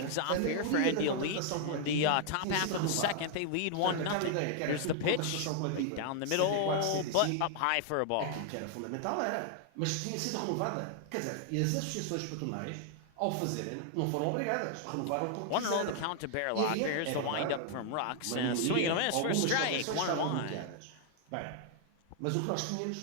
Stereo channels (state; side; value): different; both; correlation 0.00